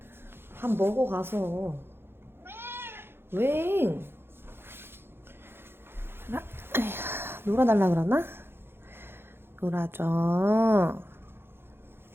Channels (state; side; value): late; left; 0.11 ms